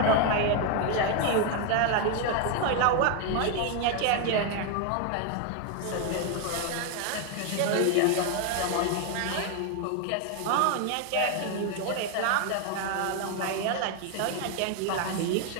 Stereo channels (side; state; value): both; different; correlation 0.01